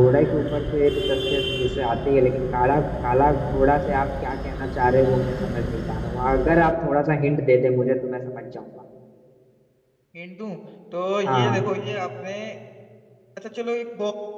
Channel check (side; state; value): both; identical; correlation 1.00